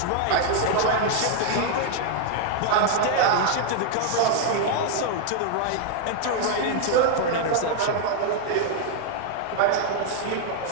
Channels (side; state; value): both; different; correlation 0.00